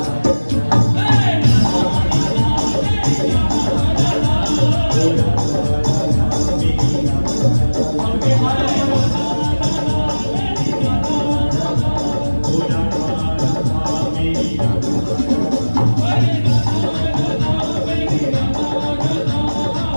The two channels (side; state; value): both; inverted; correlation -1.00